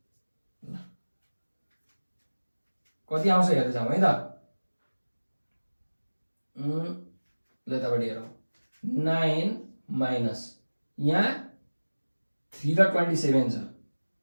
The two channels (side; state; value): both; inverted; correlation -1.00